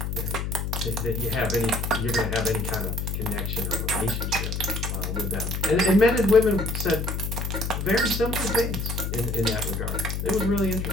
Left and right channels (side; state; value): left; noise; hum, 2 dB below the sound